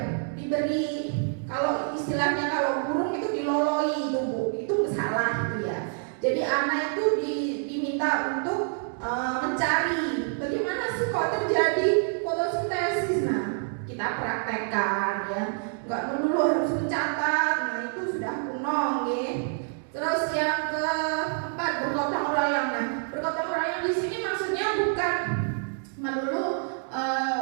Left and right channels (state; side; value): silent; left; 60 dB below the other